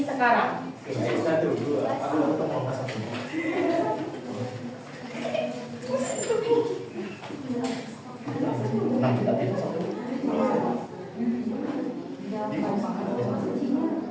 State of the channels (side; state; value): both; identical; correlation 1.00